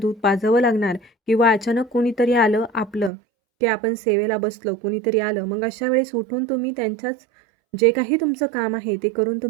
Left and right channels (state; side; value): drops out; left; at 3.1 s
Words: पाजावं लागणार किंवा अचानक कोणीतरी आलं आपलं, की आपण सेवेला बसलो, कुणीतरी आलं, मग अशा वेळेस उठून तुम्ही त्यांच्याच जे काही तुमचं काम आहे ते करून